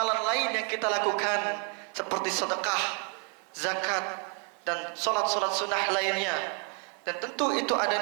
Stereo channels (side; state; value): left; quieter; 39.0 dB